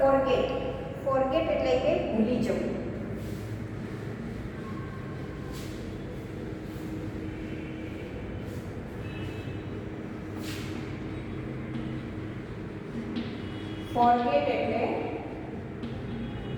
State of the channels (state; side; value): identical; both; correlation 1.00